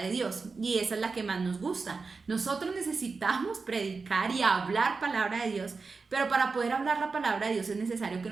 Dios, y esa es la que más nos gusta. Nosotros necesitamos predicar y hablar palabra de Dios, pero para poder hablar la palabra de Dios es necesario que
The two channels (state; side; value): quieter; left; 4.4 dB